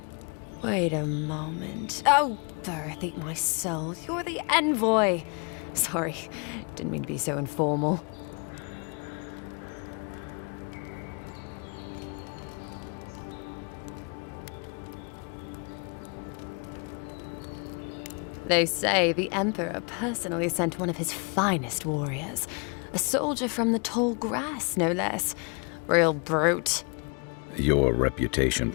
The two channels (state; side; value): quieter; right; 35.1 dB